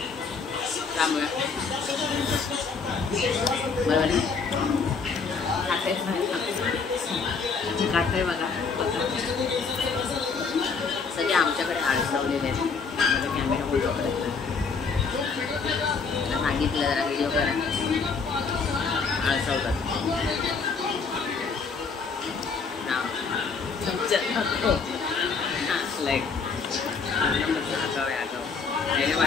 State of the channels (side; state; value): right; quieter; 5.0 dB